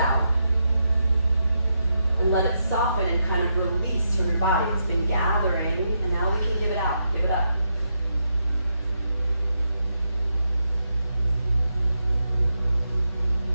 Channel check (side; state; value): both; inverted; correlation -0.82